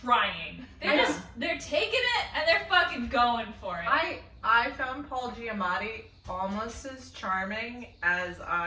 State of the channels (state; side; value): identical; both; correlation 1.00